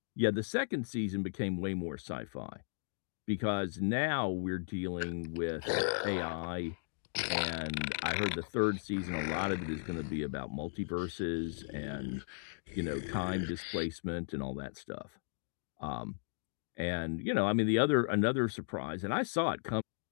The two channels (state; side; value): silent; right; digital silence